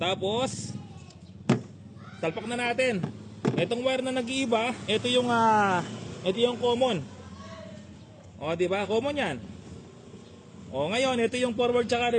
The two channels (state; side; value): identical; both; correlation 1.00